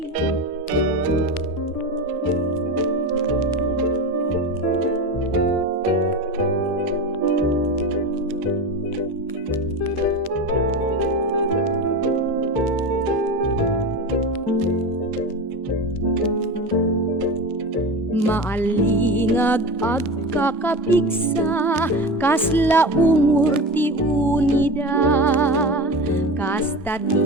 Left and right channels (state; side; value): normal; both; correlation 0.26